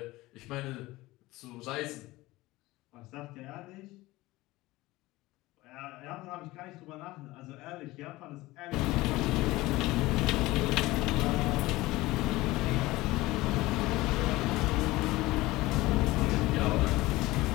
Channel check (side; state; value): right; quieter; 19.2 dB